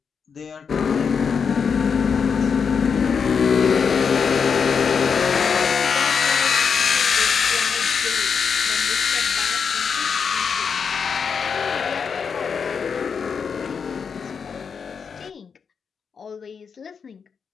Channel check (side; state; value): right; quieter; 6.2 dB